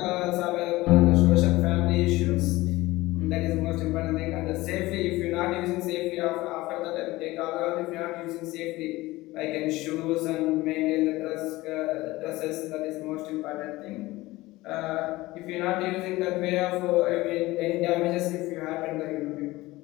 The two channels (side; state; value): right; quieter; 19.2 dB